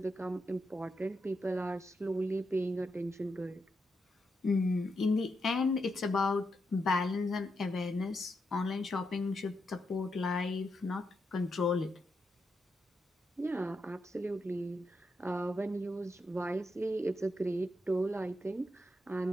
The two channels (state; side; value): normal; both; correlation 0.83